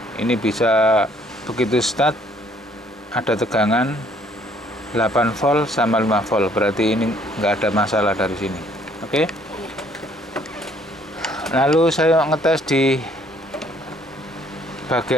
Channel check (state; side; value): normal; both; correlation 0.62